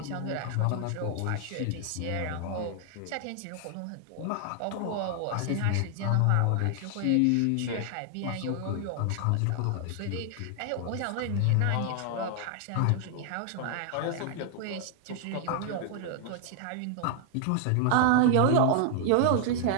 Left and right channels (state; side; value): different; both; correlation 0.00